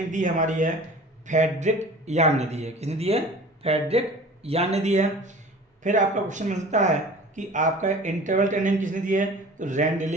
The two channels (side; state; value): both; normal; correlation 0.42